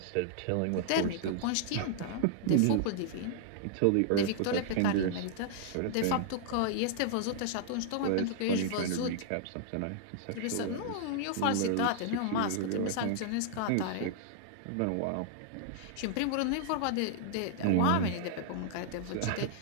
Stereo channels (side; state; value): both; different; correlation -0.01